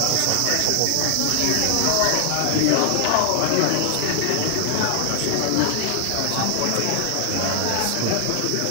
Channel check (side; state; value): both; different; correlation 0.00